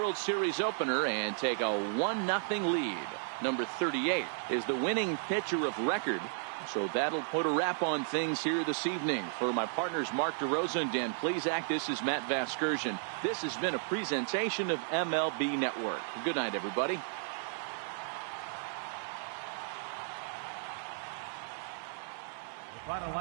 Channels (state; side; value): silent; left; 55 dB below the other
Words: Series opener and take a 1-0 lead. Number 38 is the winning pitcher of record. So that'll put a wrap on things here this evening. For my partners Mark DeRosa and Dan Plesac, this is Matt Vasgersian. This has been a presentation of MLB Network. Good night, everybody. Final